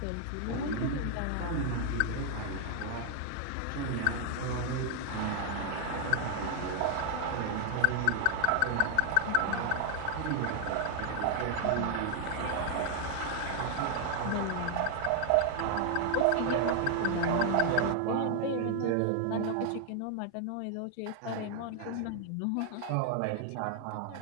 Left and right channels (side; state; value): both; different; correlation 0.00